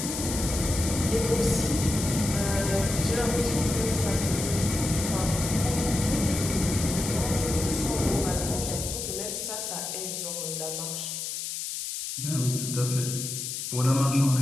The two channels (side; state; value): left; noise; hiss, 5 dB below the sound